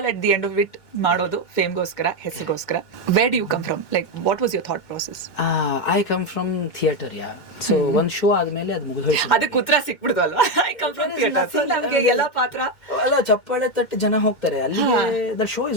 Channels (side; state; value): right; late; 2.1 ms